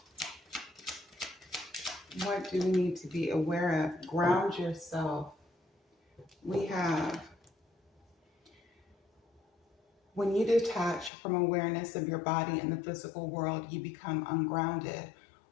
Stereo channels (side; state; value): right; drops out; at 11.1 s